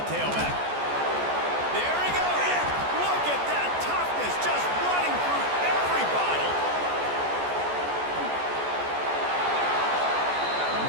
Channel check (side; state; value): left; late; 14 ms